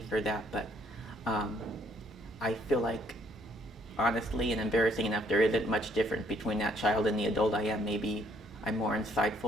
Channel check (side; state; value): both; normal; correlation 0.66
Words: for that, but um, I feel like, honestly and embarrassing enough, there isn't much difference between that child and the adult I am. Maybe I'm more